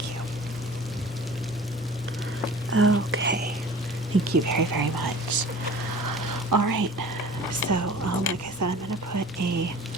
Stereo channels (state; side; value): normal; both; correlation 0.43